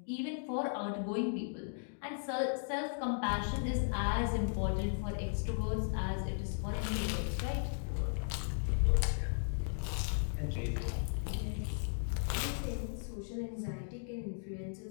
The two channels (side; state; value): right; silent; digital silence